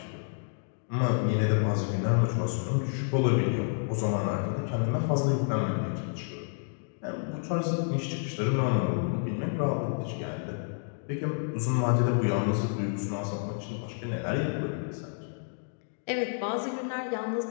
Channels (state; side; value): silent; right; digital silence